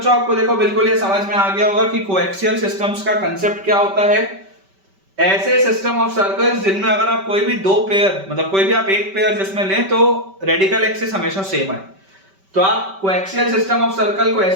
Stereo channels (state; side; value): late; left; 5.2 ms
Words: आपको देखो बिल्कुल ये समझ में आ गया होगा कि कोएक्सियल सिस्टम्स का कंसेप्ट क्या होता है। ऐसे सिस्टम ऑफ सर्कल्स जिनमें अगर आप कोई भी दो पेयर, मतलब कोई भी आप एक पेयर जिसमें लें तो रेडिकल एक्सिस हमेशा सेम है, तो आप कोएक्सियल सिस्टम ऑफ सर्कल को